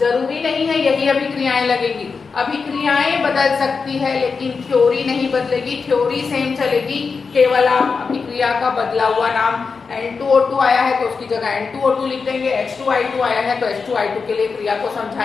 नहीं है यही अभिक्रियाएं लगेगी। अभिक्रियाएं बदल सकती है लेकिन थ्योरी नहीं बदलेगी, थ्योरी सेम चलेगी। केवल आप अभिक्रिया का बदला हुआ नाम N2O2 आया है तो उसकी जगह N2O2 लिख देंगे, H2I2 आया है तो H2I2 के लिए क्रिया को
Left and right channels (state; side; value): quieter; right; 5.0 dB